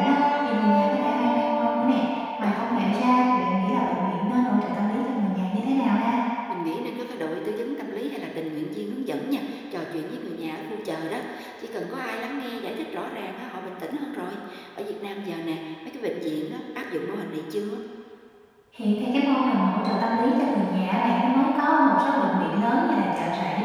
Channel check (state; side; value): identical; both; correlation 1.00